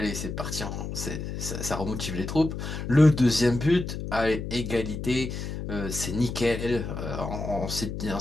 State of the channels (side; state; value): left; noise; hum, 6 dB below the sound